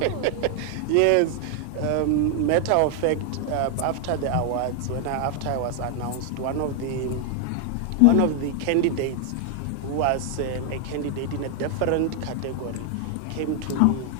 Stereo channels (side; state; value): both; different; correlation 0.00